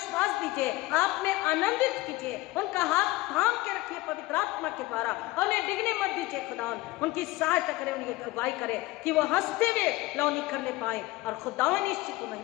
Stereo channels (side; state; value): right; quieter; 19.8 dB